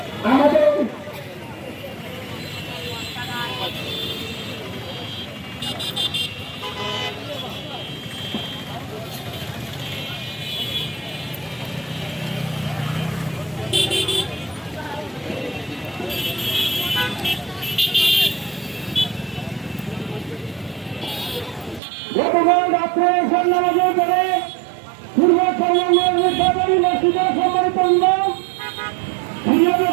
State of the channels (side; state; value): left; drops out; at 21.8 s